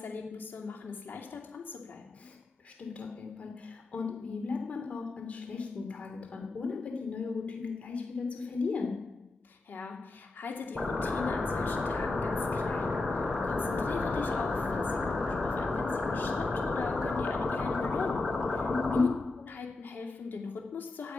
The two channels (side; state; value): right; quieter; 3.3 dB